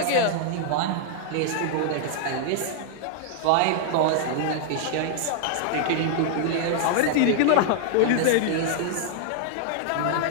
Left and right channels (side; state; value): both; different; correlation -0.01